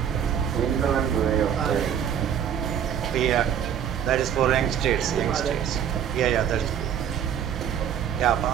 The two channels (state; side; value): quieter; left; 8.9 dB